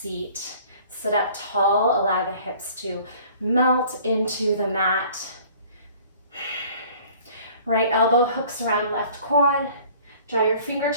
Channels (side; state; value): both; inverted; correlation -0.51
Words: Sit up tall, allow the hips to melt into the mat. Right elbow hooks around left quad. Draw your